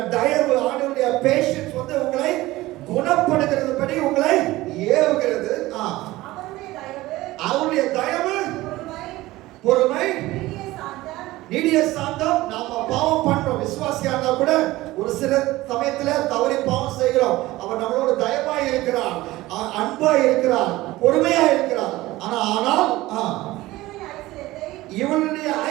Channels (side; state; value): left; quieter; 18.1 dB